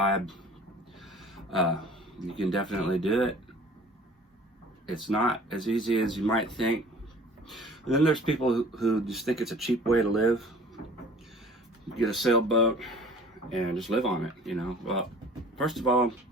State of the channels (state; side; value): normal; both; correlation 0.48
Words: you can definitely do it. It's not as easy as you might think. And then there's people who just think it's a cheap way to live. Get a sailboat and just live on it, you know. Well, first of all,